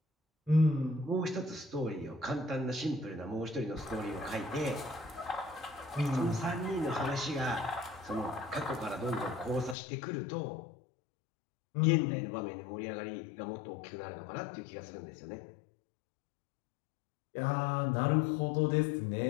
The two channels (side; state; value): right; drops out; at 9.8 s